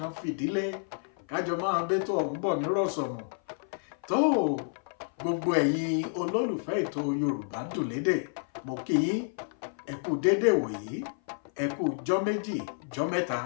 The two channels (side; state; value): right; silent; 56 dB below the other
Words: fìdílé. Kájọ máa bẹ́tò ọ̀hún bọ̀ nírọ̀sọ̀mù. Tó gbogbo ẹ̀yin olólùfẹ́ ètò Yorùbá dùn lédè, mo kí yín ẹ kú dédé wòyí, ẹ kú jọ́ méjì jọ́ mẹ́ta,